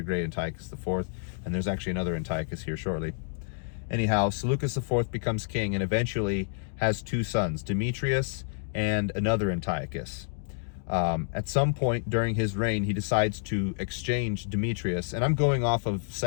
Great, Antiochus IV, and there's actually another Antiochus here shortly. Anyhow, Seleucus IV becomes king and eventually has two sons, Demetrius and another Antiochus. At some point during his reign, he decides to exchange Demetrius. And I'm going off of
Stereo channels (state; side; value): silent; right; digital silence